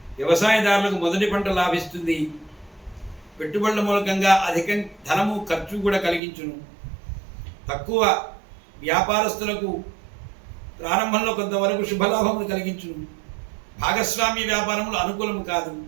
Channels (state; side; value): drops out; left; at 6.2 s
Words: వ్యవసాయదారులకు మొదటి పంట లాభిస్తుంది. పెట్టుబడుల మూలకంగా అధిక ధనము ఖర్చు కూడా కలిగించును. తక్కువ వ్యాపారస్తులకు ప్రారంభంలో కొంతవరకు శుభలాభములు కలిగించును. భాగస్వామ్య వ్యాపారములు అనుకూలము కాదు.